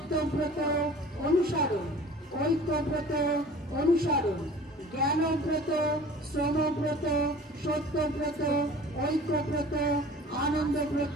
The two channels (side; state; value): both; normal; correlation 0.45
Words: অনুসরণ, ঐক্যব্রত অনুসরণ। জ্ঞানব্রত, শ্রমব্রত, সত্যব্রত, ঐক্যব্রত,